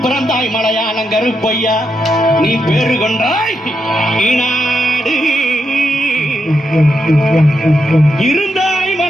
பிறந்தாய் மலையாளம் கருப்பையா, நீ பேரு கொண்டாய் நாடு இருந்தாய்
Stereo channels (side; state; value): both; normal; correlation 0.83